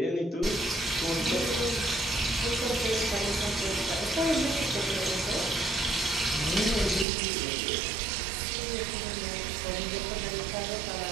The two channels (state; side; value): drops out; left; at 7.1 s